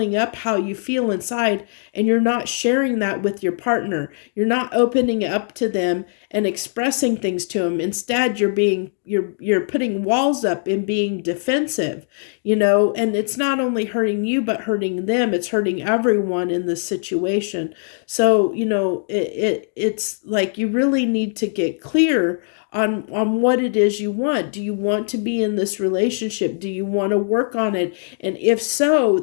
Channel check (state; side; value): silent; right; digital silence